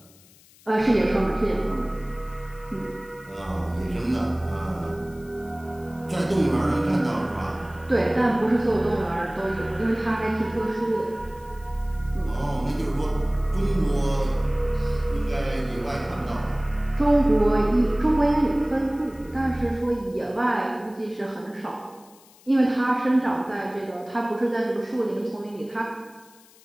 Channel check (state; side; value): noise; left; hiss, 26 dB below the sound